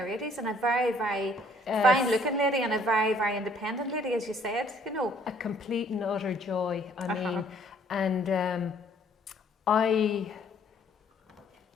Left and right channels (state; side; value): normal; both; correlation 0.61